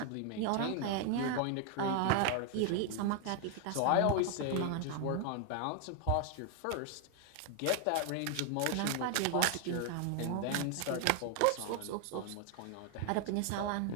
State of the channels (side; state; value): both; different; correlation 0.00